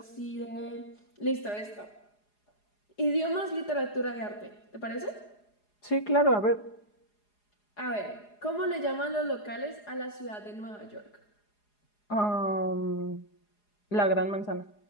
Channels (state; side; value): late; right; 4.8 ms